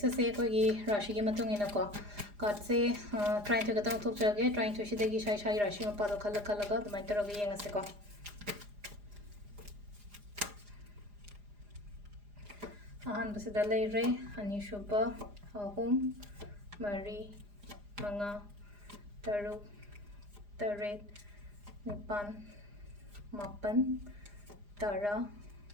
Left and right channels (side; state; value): left; late; 4.9 ms